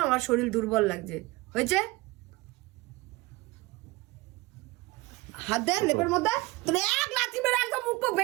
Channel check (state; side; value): quieter; left; 21.2 dB